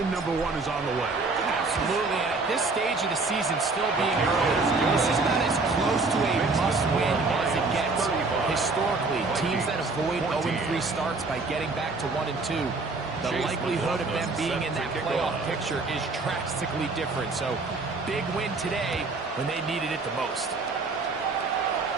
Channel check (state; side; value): quieter; left; 3.7 dB